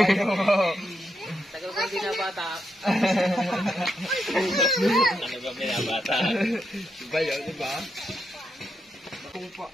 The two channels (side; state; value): both; normal; correlation 0.82